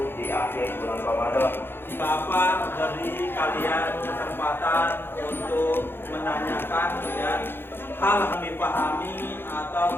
di akhir bulan Ramadan. Bapak beri kalian kesempatan untuk menanyakan ya, hal yang dipahami atau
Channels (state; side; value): late; right; 0.10 ms